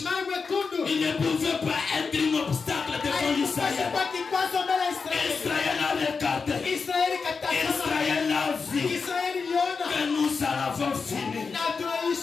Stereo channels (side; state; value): right; quieter; 5.0 dB